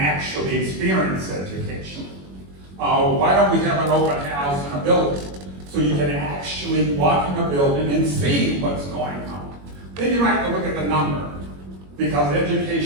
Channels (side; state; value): left; late; 21 ms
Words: experience education. Why don't we have an open house in a building? So you can actually walk in a building and see what's going on. Then you have to look at the number, because